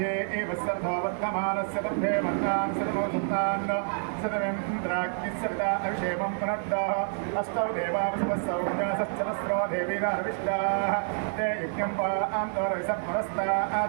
एव सर्ववर्धमानस्य दंधे वर्तान् सदमोसुतान् सदमेन्द्राग्निस्सविता अभिषेकं पुनर्दः अष्टौ देवावसवस्सौजासश्चरस्रो देवीराविष्टाः ते यज्ञं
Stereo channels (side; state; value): left; silent; 59 dB below the other